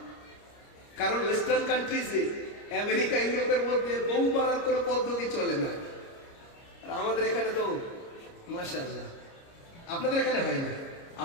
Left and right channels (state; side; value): late; right; 29 ms